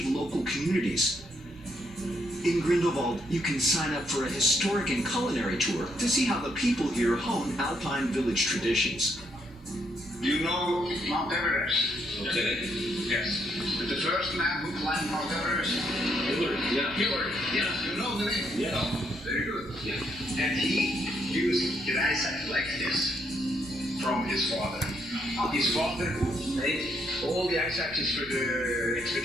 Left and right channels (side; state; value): both; normal; correlation 0.74